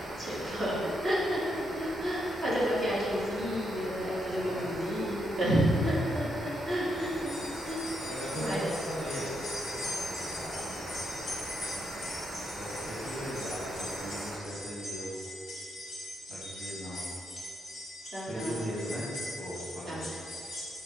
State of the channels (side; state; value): both; normal; correlation 0.80